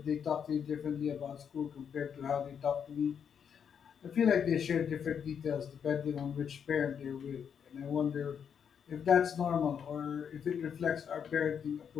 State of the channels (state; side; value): quieter; right; 7.6 dB